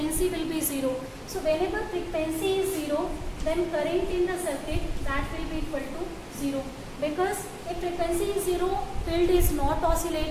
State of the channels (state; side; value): identical; both; correlation 1.00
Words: will be 0. So whenever frequency is 0, then current in the circuit, that will be equal to 0. Because if frequency is 0, field is not